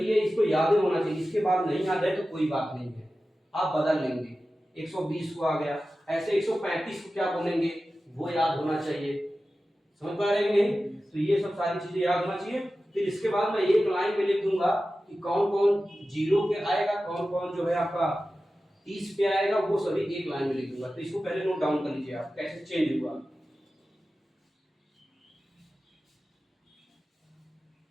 है, इसको याद होना चाहिए। इसके बाद नहीं याद है तो कोई बात नहीं है, आप बदल लेंगे। 120 को आ गया, ऐसे 135 को क्या बोलेंगे वो याद होना चाहिए। समझ पा रहे हैं नहीं? तो ये सब सारी चीजें याद होना चाहिए। फिर इसके बाद मैं एक लाइन में लिख दूंगा कि कौन कौन 0 पे आएगा, कौन कौन जो है आपका 30 पे आएगा, वो सभी एक लाइन में लिख दूंगा। तो इसको पहले नोट डाउन कर लीजिए आप, कैसे चेंज हुआ।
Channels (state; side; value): normal; both; correlation 0.94